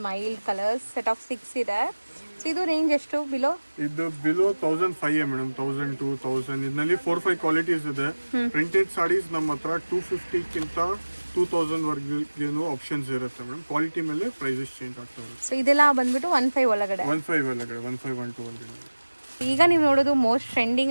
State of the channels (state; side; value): inverted; both; correlation -1.00